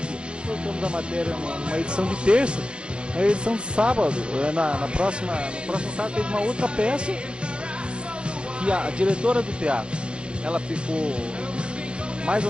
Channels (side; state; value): left; late; 0.055 ms